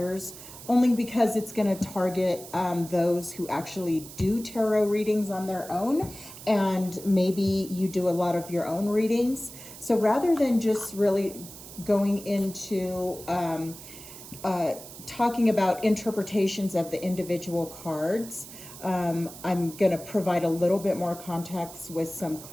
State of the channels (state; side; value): noise; right; hiss, 15 dB below the sound